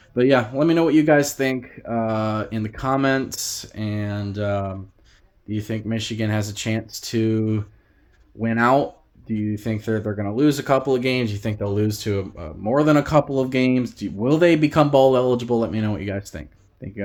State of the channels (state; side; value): identical; both; correlation 1.00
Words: but yeah, let me know what you guys think in the comments. And do you think Michigan has a chance to win out? Do you think they're going to lose a couple of games? Do you think they'll lose to more than a couple of games? Will they become bowl eligible? Let me know what you guys think. Thank you